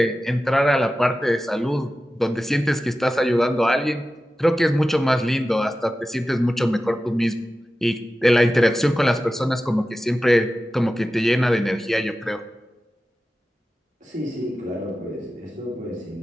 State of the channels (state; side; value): normal; both; correlation 0.94